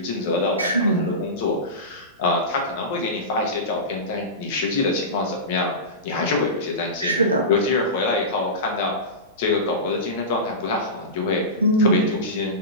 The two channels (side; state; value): both; normal; correlation -0.19